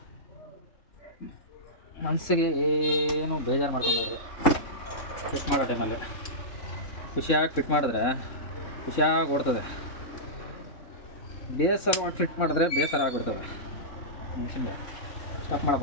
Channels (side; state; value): right; late; 3.7 ms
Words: ಮನಸ್ಸಿಗೆ ಏನು ಬೇಜಾರು ಮಾಡ್ಕೊಂಡ್ರೆ ಫಿಟ್ ಮಾಡೋ ಟೈಮಲ್ಲಿ ಖುಷಿಯಾಗಿ ಫಿಟ್ ಮಾಡಿದ್ರೆ ಖುಷಿಯಾಗಿ ಓಡ್ತದೆ. ಬೇಸರ ಫಿಟ್ ಮಾಡಿದ್ರೆ ಬೇಸರ ಆಗಿಬಿಡ್ತದೆ ಮನುಷ್ಯನಿಗೆ. ಸ್ಟಾಪ್